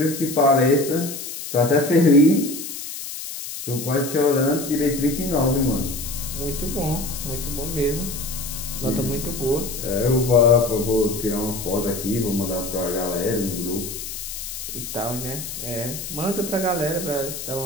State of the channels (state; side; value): noise; left; hiss, 8 dB below the sound